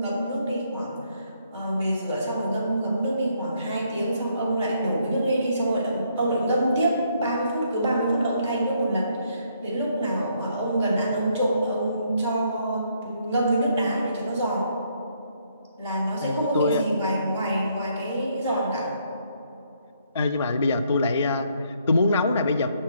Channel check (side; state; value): both; inverted; correlation -0.71